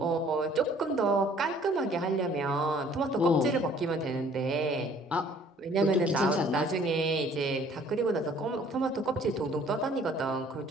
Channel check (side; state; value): both; normal; correlation 0.57